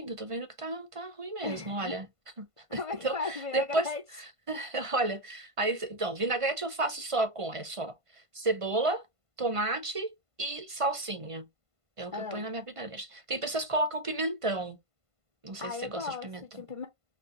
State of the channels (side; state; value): left; late; 1.5 ms